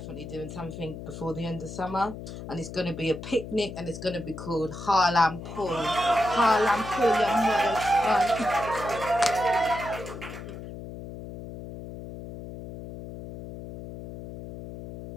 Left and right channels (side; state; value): left; noise; hum, 11 dB below the sound